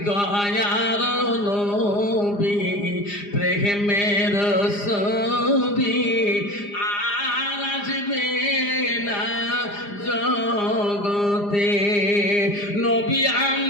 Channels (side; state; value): right; late; 4.9 ms